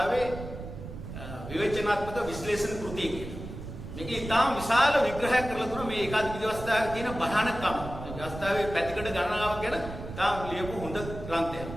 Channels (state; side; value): noise; right; rumble, 10 dB below the sound